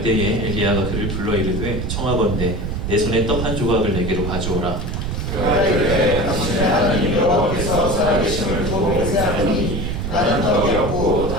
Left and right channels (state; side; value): noise; right; rumble, 3 dB below the sound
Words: 때에 엘리야가 그를 불러 이르되 청하건대 내 손에 떡 한 조각을 내게로 가져오라. 그가 이르되 당신의 하나님 여호와께서 살아계심을 두고 맹세하노니 나는 떡이 없고